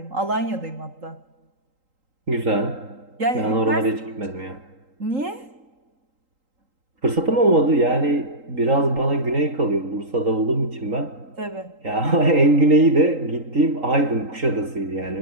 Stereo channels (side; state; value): left; late; 3.8 ms